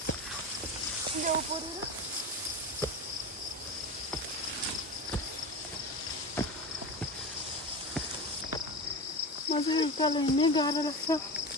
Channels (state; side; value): normal; both; correlation 0.26